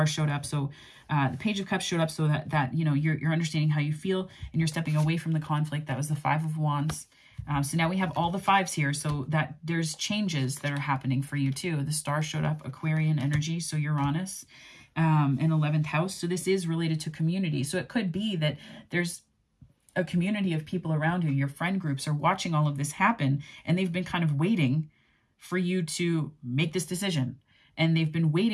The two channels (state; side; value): identical; both; correlation 1.00